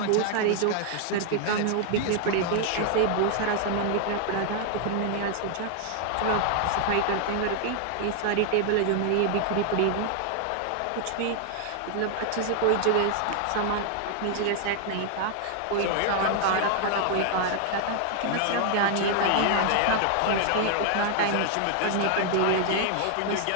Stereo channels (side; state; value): both; different; correlation 0.00